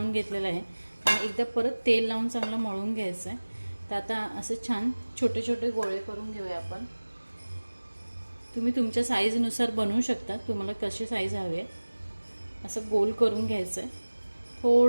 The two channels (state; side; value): inverted; both; correlation -1.00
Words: घेतलेलं आहे आणि एकदा परत तेल लावून चांगलं मळून घ्यायचं आहे। तर आता असं छान छोटे छोटे गोळे करून घेऊया आपण। तुम्ही तुमच्या साईजनुसार बनवू शकता, तुम्हाला कशी साईज हवी आहे असं गोल करून घ्यायचं आहे।